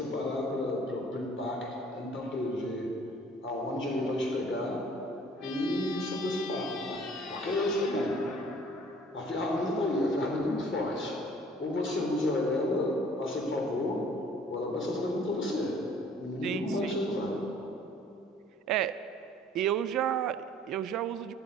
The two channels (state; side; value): normal; both; correlation 0.54